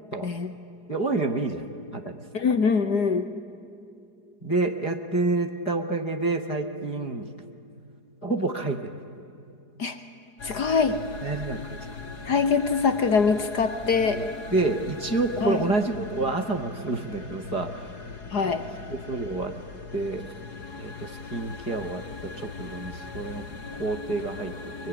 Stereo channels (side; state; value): right; late; 4.8 ms